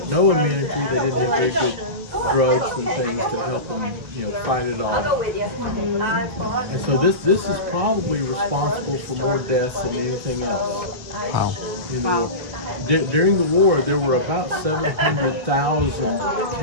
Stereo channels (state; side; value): late; left; 1.9 ms